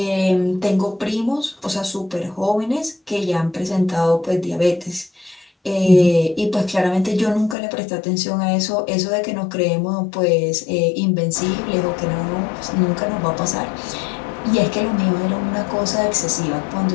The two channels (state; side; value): drops out; right; at 7.6 s